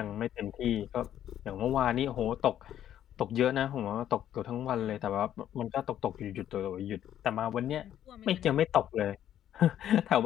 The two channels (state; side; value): quieter; right; 11.0 dB